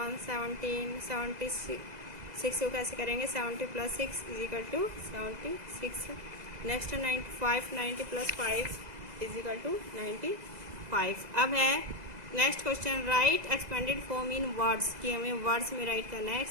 17, 76 को कैसे करेंगे, 70 + 6 = 76। नेक्स्ट 95, 90 + 5 = 95। अब है next question, right expanded form in words, कि हमें वर्ड्स में राइट करना है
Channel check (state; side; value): late; left; 2.0 ms